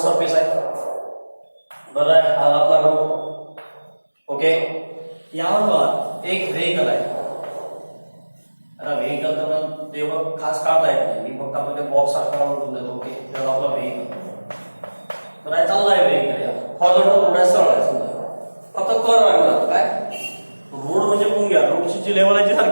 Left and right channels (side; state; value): both; inverted; correlation -1.00